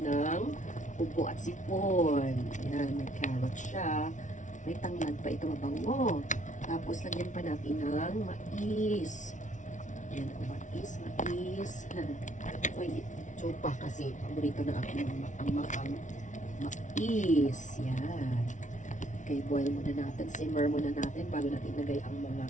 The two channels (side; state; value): right; late; 0.36 ms